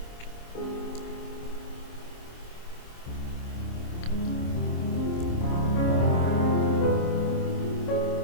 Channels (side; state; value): right; late; 26 ms